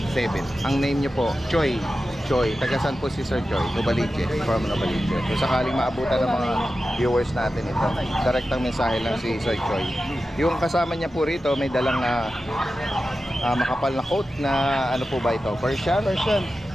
0918-464-3887. Ang name nyo po, Choi. Tagasan po si Sir Choi, Novaliches, from Novaliches. Kung sakaling maabutan ng mga viewers natin ito, direktang mensahe lang si Sir Choi. Yung kasama niya po rito, may dalang makapal na coat na ano po ba ito? Persian?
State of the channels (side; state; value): both; normal; correlation 0.93